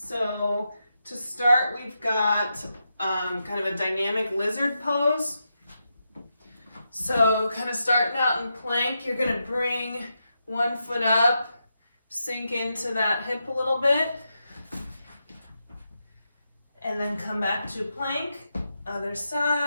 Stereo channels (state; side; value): inverted; both; correlation -0.86